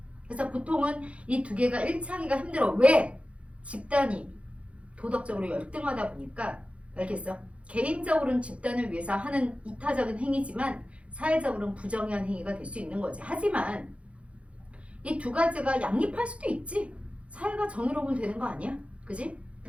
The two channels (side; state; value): left; late; 0.062 ms